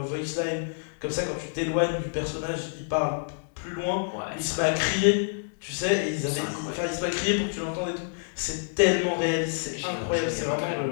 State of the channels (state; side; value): silent; right; digital silence